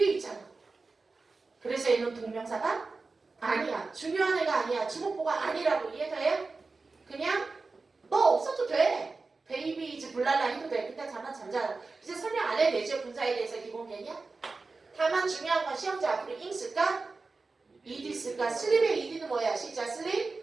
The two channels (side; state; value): left; quieter; 3.9 dB